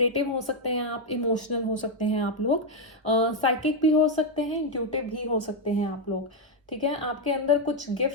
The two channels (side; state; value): both; normal; correlation 0.02